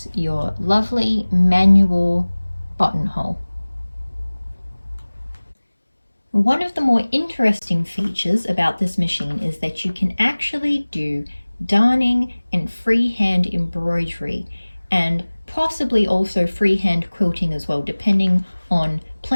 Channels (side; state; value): both; inverted; correlation -1.00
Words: your lovely manual buttonhole. One of the more interesting features about this machine is that you can actually do darning and freehand embroidery, and possibly also freehand quilting as well, depending on